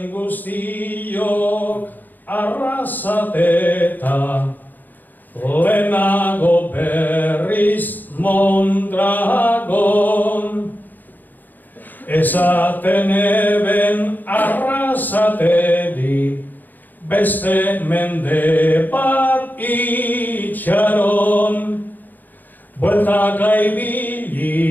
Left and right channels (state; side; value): late; right; 0.088 ms